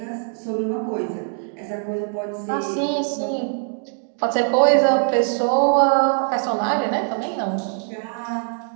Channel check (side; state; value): left; silent; 61 dB below the other